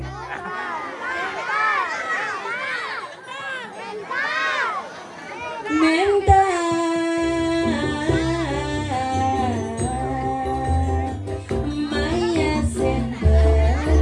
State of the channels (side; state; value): both; identical; correlation 1.00